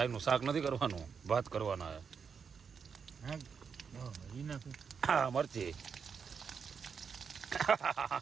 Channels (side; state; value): left; quieter; 6.3 dB